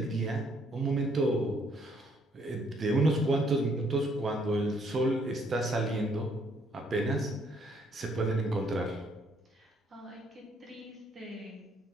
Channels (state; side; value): normal; both; correlation 0.68